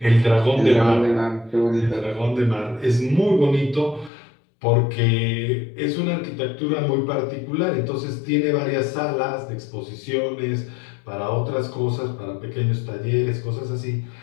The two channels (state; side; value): drops out; right; at 4.1 s